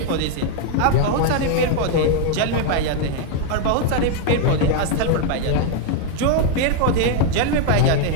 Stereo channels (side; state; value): both; different; correlation 0.00